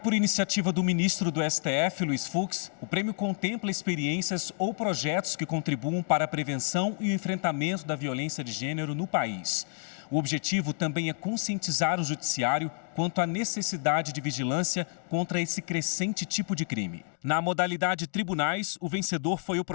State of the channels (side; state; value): right; silent; 58 dB below the other